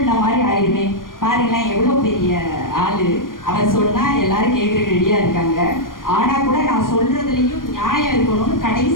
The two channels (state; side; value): late; right; 0.90 ms